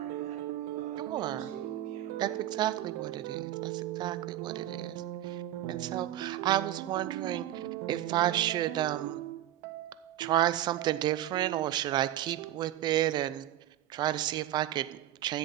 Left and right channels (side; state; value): left; quieter; 13.0 dB